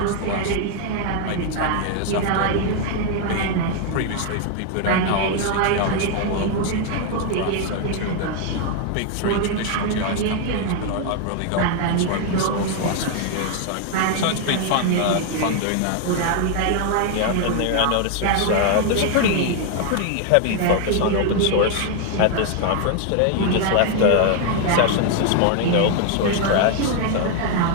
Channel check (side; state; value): both; different; correlation 0.00